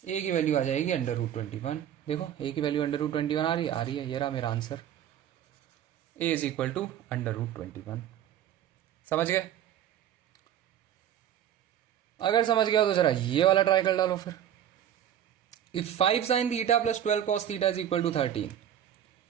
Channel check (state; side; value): quieter; left; 10.5 dB